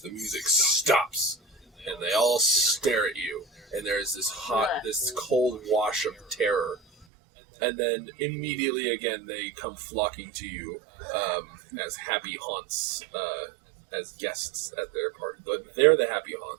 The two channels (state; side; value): drops out; left; at 7.1 s